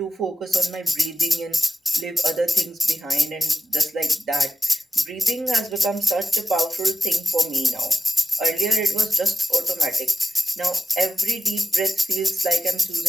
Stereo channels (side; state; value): both; normal; correlation 0.93